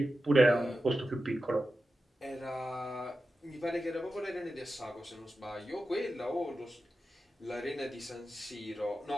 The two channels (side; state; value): both; normal; correlation 0.92